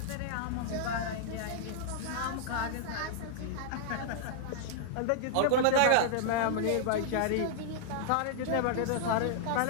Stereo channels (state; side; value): different; both; correlation -0.01